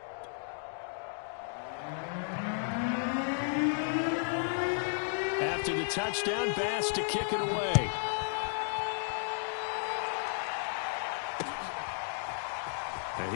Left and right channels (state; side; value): silent; right; digital silence